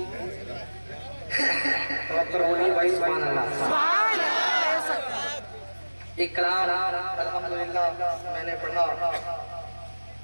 बोलिए भाई सुभान अल्लाह। एक कलाम अल्हम्दुलिल्लाह मैंने पढ़ा,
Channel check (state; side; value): inverted; both; correlation -1.00